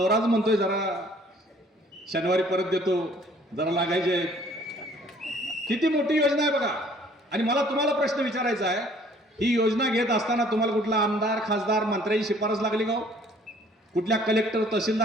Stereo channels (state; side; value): normal; both; correlation 0.57